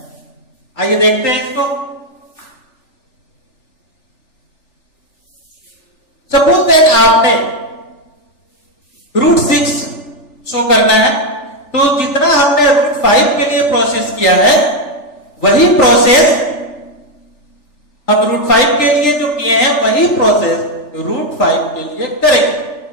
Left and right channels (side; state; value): right; late; 3.4 ms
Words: आइए देखते हैं इसको। सपोज दैट आपने √6 शो करना है, तो जितना हमने √5 के लिए प्रोसेस किया है वही प्रोसेस हम √5 के लिए जो किए हैं वही प्रोसेस √5 के लिए करेंगे।